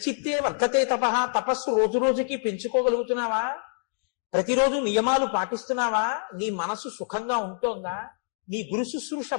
వర్ధతే తపస్సు రోజు రోజుకి పెంచుకోగలుగుతున్నావా? ప్రతిరోజు నియమాలు పాటిస్తున్నావా? నీ మనసు సుఖంగా ఉంటోందా? నీ గురు శుశ్రూష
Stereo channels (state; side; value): silent; right; digital silence